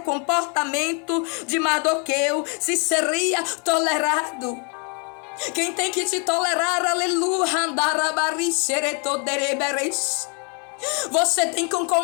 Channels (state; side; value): quieter; right; 36.9 dB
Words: comportamento de Mardoqueu, se seria tolerado. Quem tem que te tolerar, aleluia, você tem que